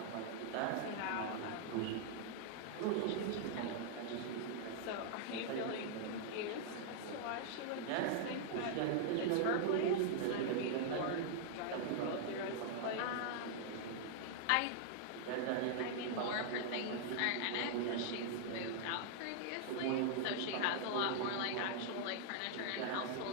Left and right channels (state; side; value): different; both; correlation -0.01